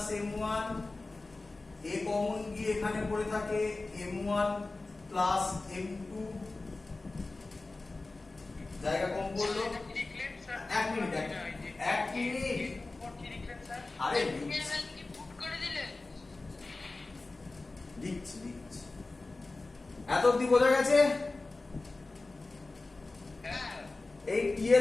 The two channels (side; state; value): right; quieter; 3.3 dB